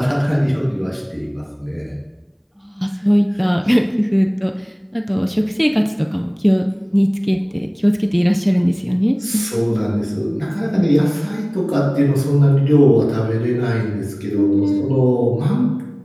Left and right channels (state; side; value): identical; both; correlation 1.00